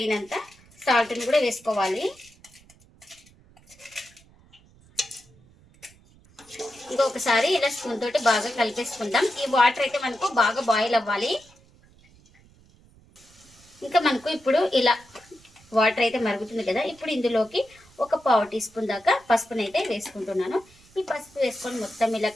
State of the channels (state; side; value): noise; right; rumble, 28 dB below the sound